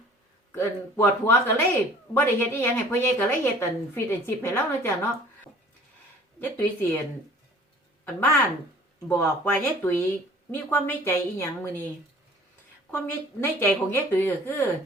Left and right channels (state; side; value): normal; both; correlation 0.51